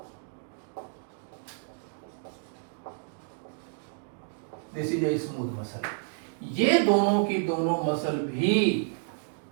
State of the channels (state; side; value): silent; left; digital silence